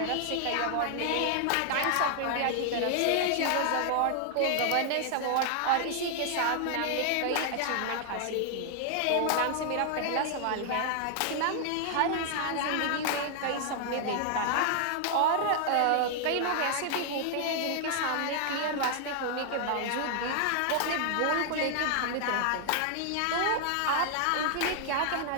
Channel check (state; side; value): different; both; correlation 0.00